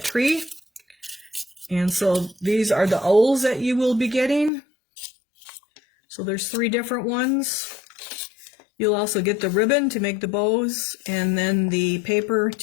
tree. And so these are the owls that you will be getting. So there's 3 different ones. You'll also get the ribbon to make the bows, and then the paper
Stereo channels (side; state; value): right; drops out; at 4.5 s